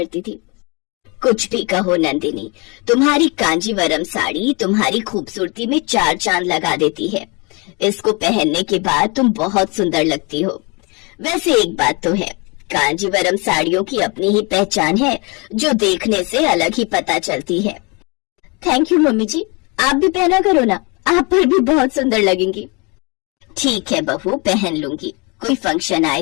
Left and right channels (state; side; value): quieter; right; 29.5 dB